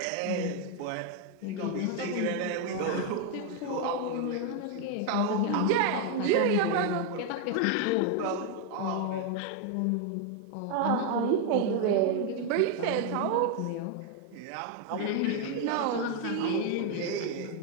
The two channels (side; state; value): both; different; correlation 0.01